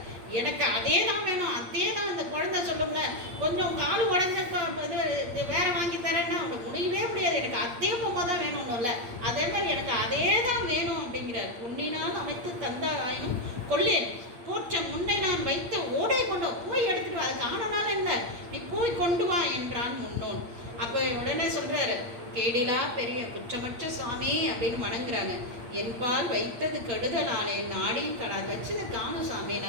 எனக்கு அதே தான் வேணும், அதே தான். அந்த குழந்தை சொல்லுங்க, கொஞ்சம் கால் உடஞ்சப்ப இது வேற வாங்கி தரேன்னா அவங்க முடியவே முடியாது, எனக்கு அதே பொம்மை தான் வேணும்ல, அதே மாதிரி எனக்கு அதே தான் வேணும் அப்படிங்கிறார். பொன்னினால் அமைத்து தந்தார் ஆயினும் கொள்ளேன், போற்ற முன்னை நான் வைத்த ஓடை கொண்டு போய் எடுத்துட்டு வா, அது காணனால இல்லை, நீ போய் கொண்டு வா என்றான் முன்னோன். அப்போ உடனே சொல்றாரு, கேடிலா பெரிய குற்றமற்ற சுவாமி அப்படின்னு வணங்குறாங்க. என்பால் வைத்தது கெடுதலானே, நாடியும் கடாது வச்சதை காணும் சாமி,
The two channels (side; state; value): left; late; 8.6 ms